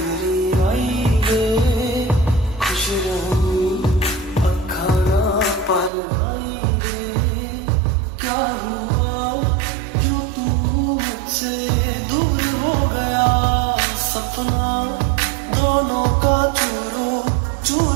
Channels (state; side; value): drops out; left; at 5.9 s